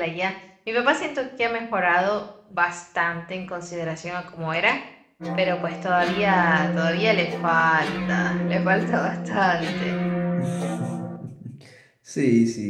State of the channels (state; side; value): identical; both; correlation 1.00